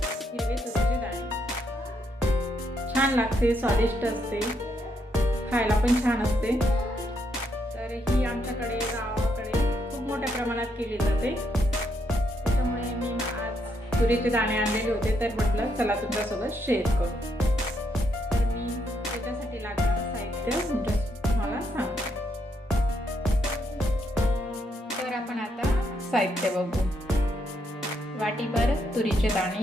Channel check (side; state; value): both; normal; correlation 0.77